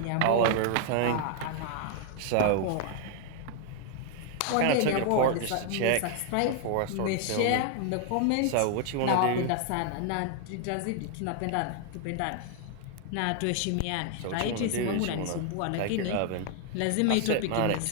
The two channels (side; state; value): both; different; correlation 0.00